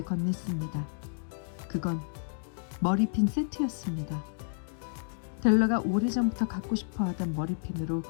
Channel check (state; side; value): silent; right; digital silence